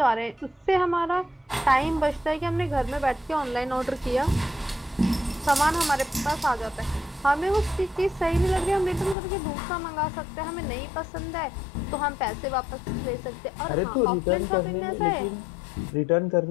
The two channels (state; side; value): drops out; right; at 9.2 s